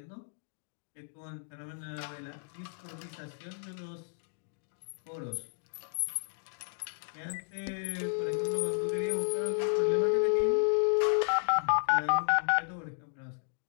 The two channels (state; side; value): silent; right; digital silence